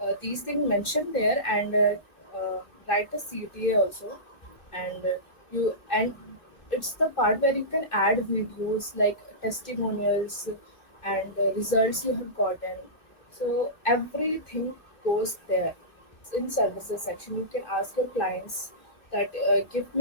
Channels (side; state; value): right; late; 2.7 ms